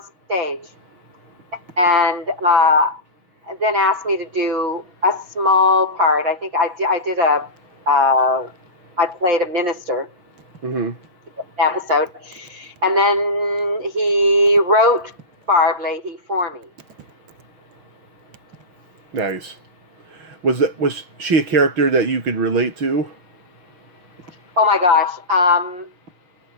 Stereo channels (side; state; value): left; late; 6.2 ms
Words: stage and then asked me to do a small part. I think I did I played a minister Hmm. episode, and then he wrote Barb Leahy for me. Nice. Was she a character that you could relate to? Oh my gosh.